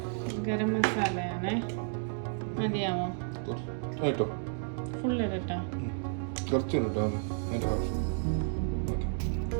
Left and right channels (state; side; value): silent; left; digital silence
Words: ഗരം മസാലയാണ്. മതിയാവോ? ഫുൾ ഇടട്ടെ?